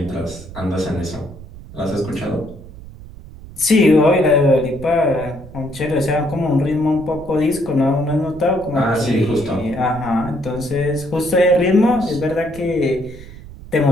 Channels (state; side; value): noise; right; rumble, 16 dB below the sound